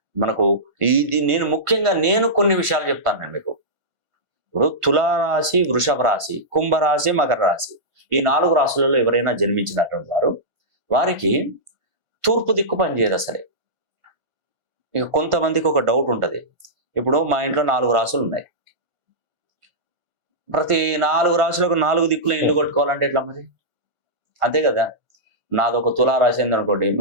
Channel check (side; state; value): left; late; 1.5 ms